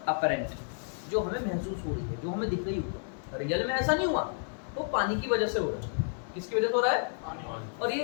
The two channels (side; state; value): right; silent; digital silence